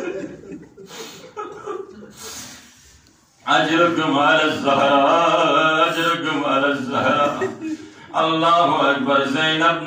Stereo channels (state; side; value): identical; both; correlation 1.00